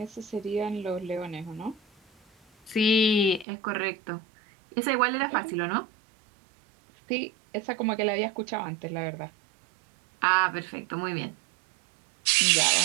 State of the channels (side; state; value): left; drops out; at 3.5 s